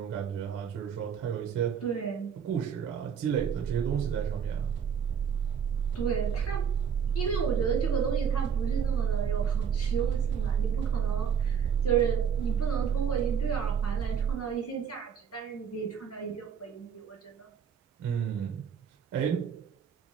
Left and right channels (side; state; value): left; quieter; 7.3 dB